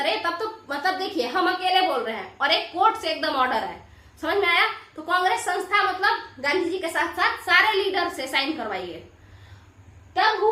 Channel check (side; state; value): both; identical; correlation 1.00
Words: तब तो मतलब देखिए हम अकेले बोल रहे हैं और एक कोर्ट से एकदम ऑर्डर है, समझ में आया। तो कांग्रेस संस्था मतलब गांधी जी के साथ साथ सारे लीडर से साइन करवाइए। तब